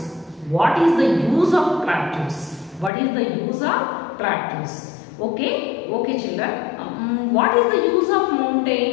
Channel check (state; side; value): drops out; right; at 2.9 s